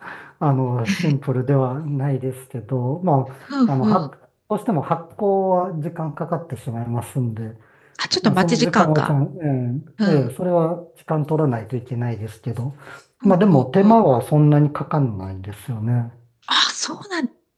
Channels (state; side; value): identical; both; correlation 1.00